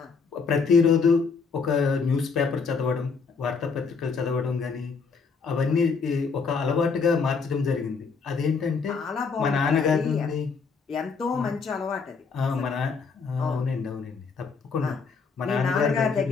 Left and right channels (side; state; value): right; quieter; 5.1 dB